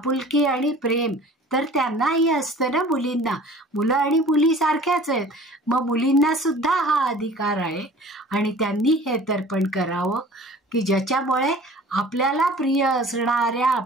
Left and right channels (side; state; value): both; normal; correlation 0.46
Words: आणि प्रेम तर त्यांनाही असतं ना मुलींना. मुलं आणि मुली सारख्याच आहेत, मग मुलींना सुद्धा हा अधिकार आहे आणि त्यांनी हे तर्पण करावं की ज्याच्यामुळे आपल्याला प्रिय असणाऱ्या